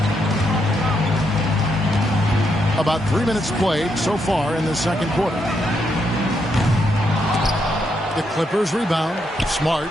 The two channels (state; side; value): normal; both; correlation 0.79